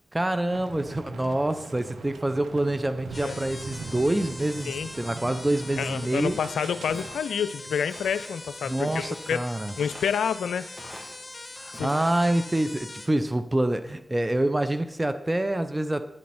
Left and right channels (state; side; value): normal; both; correlation 0.92